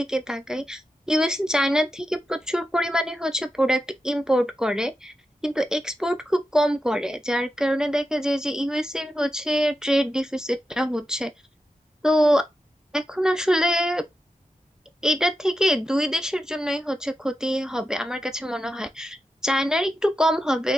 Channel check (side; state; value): both; normal; correlation 0.89